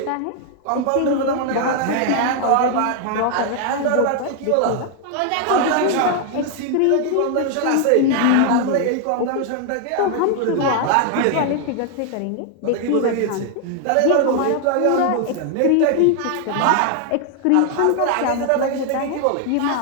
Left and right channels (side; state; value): both; different; correlation 0.00